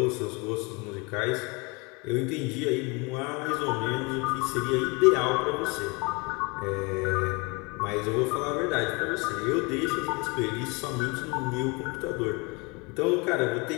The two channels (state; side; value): quieter; right; 28.5 dB